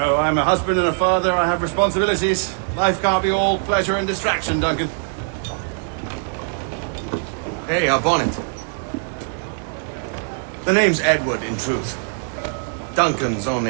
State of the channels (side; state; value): left; silent; digital silence